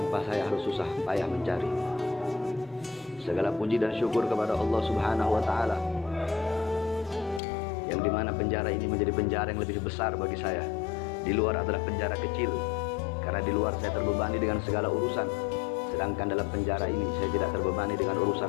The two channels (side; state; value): right; drops out; at 7.4 s